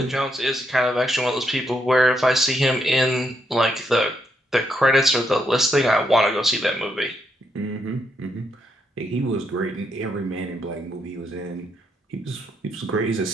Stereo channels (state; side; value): normal; both; correlation 0.78